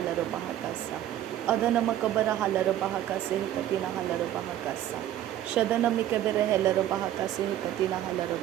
bahakasa. Adana makabara halara bahakase katina halara bahakasa. Shadana mikabara halara bahakase katina halara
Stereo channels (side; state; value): left; quieter; 12.3 dB